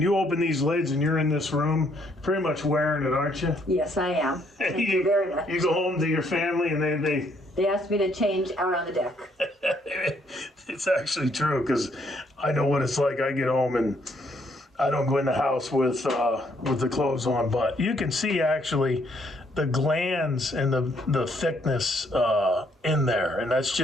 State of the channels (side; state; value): both; normal; correlation 0.69